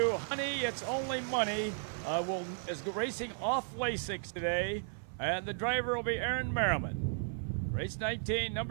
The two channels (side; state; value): left; silent; 55 dB below the other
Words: Honey, It's Only Money, is racing off Lasix today, and the driver will be Aaron Merriman. Race 19,